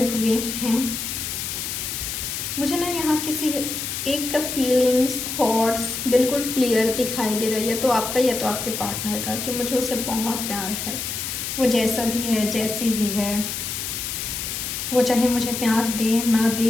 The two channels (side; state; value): left; noise; hiss, 4 dB below the sound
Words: हुए हैं। मुझे ना यहाँ किसी एक का फीलिंग्स थॉट्स बिल्कुल क्लियर दिखाई दे रहा है, या तो आपका या तो आपके पार्टनर का, कि मुझे उससे बहुत प्यार है। वो जैसा भी है, जैसी भी है, वो चाहे मुझे प्यार दे ना